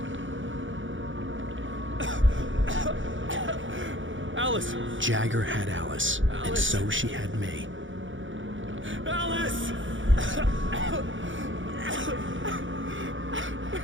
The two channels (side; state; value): left; late; 0.56 ms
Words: Alice! Jagger had Alice, and so she had me. Alice!